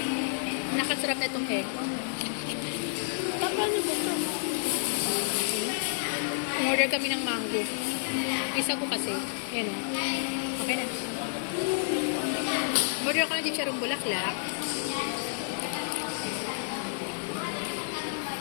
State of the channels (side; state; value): right; silent; 58 dB below the other